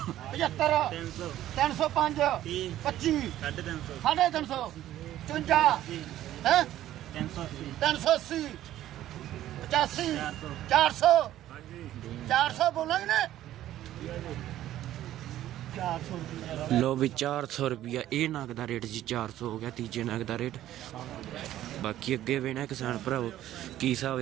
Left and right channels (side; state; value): left; quieter; 13.2 dB